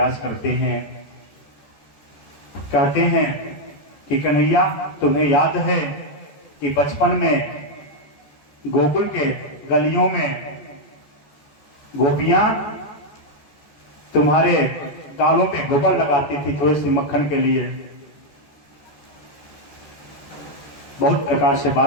करते हैं। कहते हैं कि कन्हैया तुम्हें याद है कि बचपन में गोकुल के गलियों में गोपियां तुम्हारे गालों पे गोबर लगाती थी थोड़ी सी मक्खन के लिए। बहुत प्रकार से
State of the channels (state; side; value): late; right; 14 ms